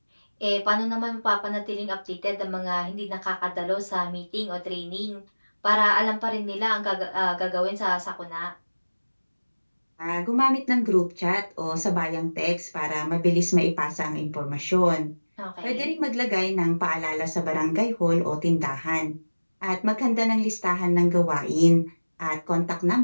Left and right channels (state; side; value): inverted; both; correlation -1.00